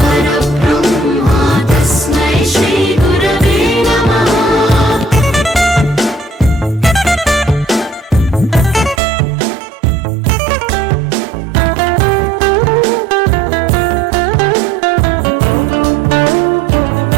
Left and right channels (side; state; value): left; drops out; at 9.0 s